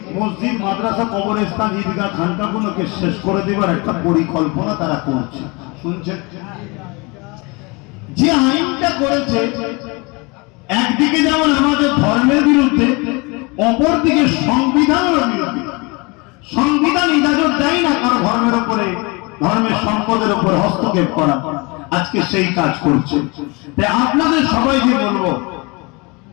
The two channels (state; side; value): quieter; right; 27.7 dB